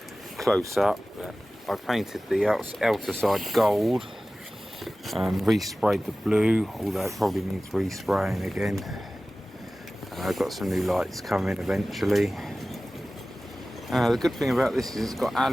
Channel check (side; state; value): both; normal; correlation 0.97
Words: close-up, but I painted the outer side gold and resprayed the blue, although it probably needs respraying again. I've got some new lights coming eventually. The good thing about this is it's got